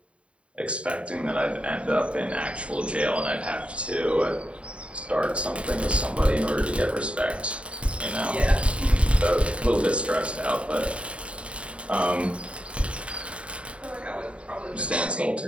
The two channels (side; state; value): left; late; 0.061 ms